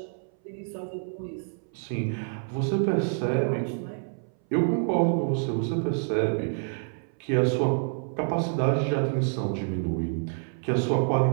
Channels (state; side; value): silent; left; 60 dB below the other